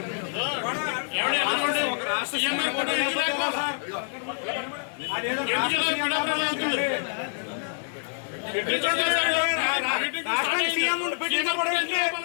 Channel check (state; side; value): silent; right; 60 dB below the other